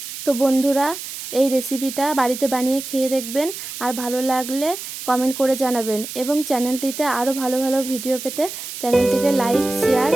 তো বন্ধুরা, এই রেসিপিটা বাড়িতে বানিয়ে খেয়ে দেখবেন, আর ভালো লাগলে কমেন্ট করে জানাবেন, এবং চ্যানেলটিতে আরও ভালো ভালো ভিডিও পেতে চ্যানেলটিকে লাইক, শেয়ার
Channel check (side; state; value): right; noise; hiss, 9 dB below the sound